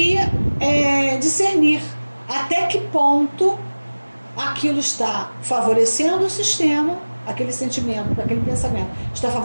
discernir até que ponto aquilo está favorecendo o sistema, aquele sentimento, aquele pensamento está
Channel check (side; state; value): both; inverted; correlation -1.00